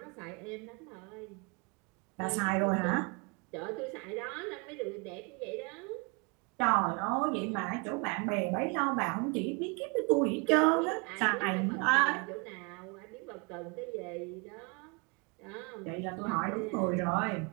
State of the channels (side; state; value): left; quieter; 32.3 dB